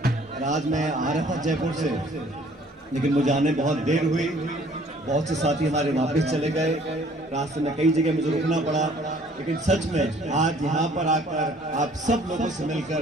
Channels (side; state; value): both; normal; correlation 0.56